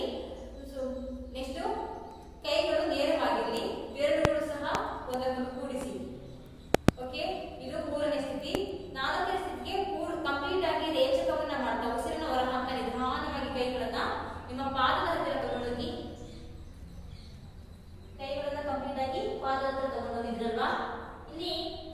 ಸೊ ನೆಕ್ಸ್ಟ್ ಕೈಗಳು ನೇರವಾಗಿರಲಿ. ಬೆರಳುಗಳು ಸಹ ಒಂದಕ್ಕೊಂದು ಕೂಡಿಸಿ. ಓಕೆ, ಇದು ಮೂರನೇ ಸ್ಥಿತಿ. ನಾಲ್ಕನೇ ಸ್ಥಿತಿಗೆ ಕಂಪ್ಲೀಟ್ ಆಗಿ ರೇಚಕವನ್ನ ಮಾಡ್ತಾ ಉಸಿರನ್ನ ಹೊರ ಹಾಕ್ತಾ ನಿಧಾನವಾಗಿ ಕೈಗಳನ್ನ ನಿಮ್ಮ ಪಾದದ ಹತ್ತಿರ ತಗೊಂಡೋಗಿ, ಕೈಗಳನ್ನ ಕಂಪ್ಲೀಟ್ ಆಗಿ ಪಾದದ ಹತ್ರ ತಗೊಂಡೋಗಿದ್ರಲ್ವಾ, ಇಲ್ಲಿ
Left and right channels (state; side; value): identical; both; correlation 1.00